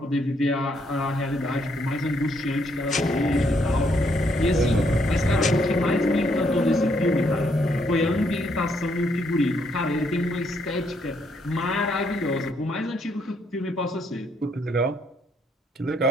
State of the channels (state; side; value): normal; both; correlation 0.72